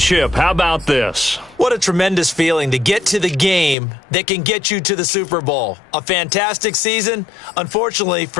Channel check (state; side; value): drops out; right; at 3.8 s